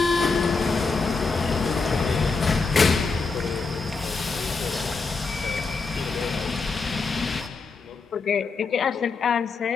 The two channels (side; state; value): right; quieter; 4.4 dB